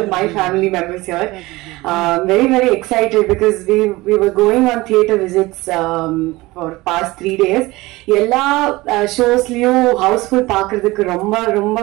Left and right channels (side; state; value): left; quieter; 20.5 dB